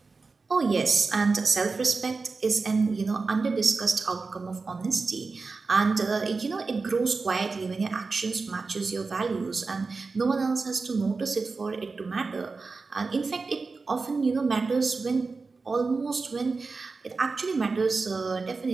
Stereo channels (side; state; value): left; quieter; 4.2 dB